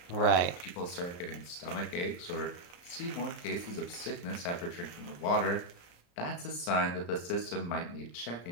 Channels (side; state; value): right; late; 34 ms